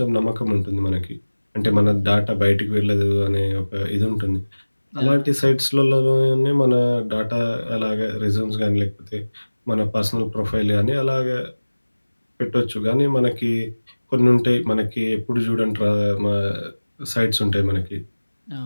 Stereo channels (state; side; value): inverted; both; correlation -1.00